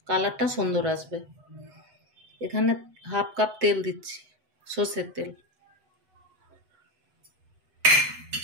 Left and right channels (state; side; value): late; left; 7.9 ms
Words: কালারটা সুন্দর আসবে। এখানে হাফ কাপ তেল দিচ্ছি, সর্ষের তেল।